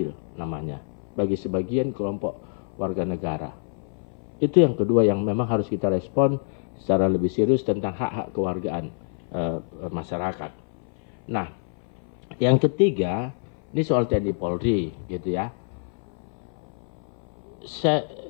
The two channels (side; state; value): right; silent; 59 dB below the other